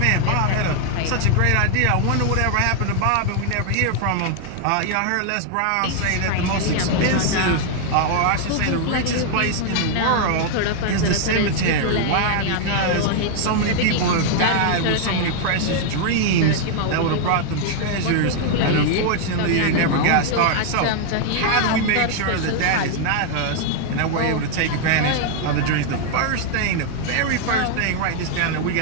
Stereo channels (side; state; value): both; different; correlation 0.00